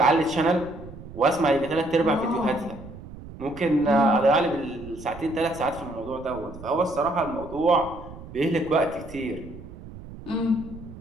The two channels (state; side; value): noise; right; rumble, 15 dB below the sound